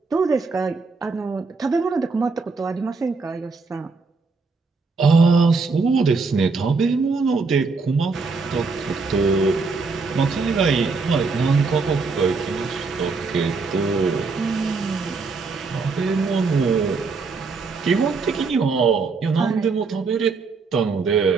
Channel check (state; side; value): quieter; left; 4.4 dB